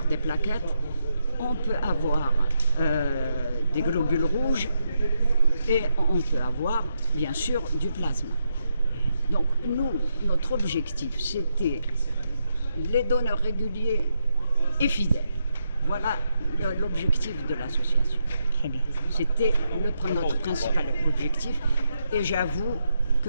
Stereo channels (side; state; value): both; inverted; correlation -0.81